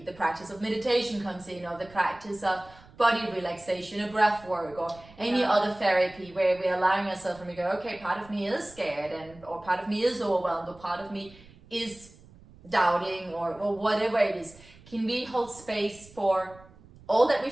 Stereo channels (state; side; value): noise; right; rumble, 23 dB below the sound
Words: the practice of meditation comes in, or the practice of body relaxation or breath work or any other therapy, where we're allowing ourselves and we go, okay, part of me is scared, or part of me is overwhelmed, or part of me is doubting, or whatever it is. Can we hold space for all that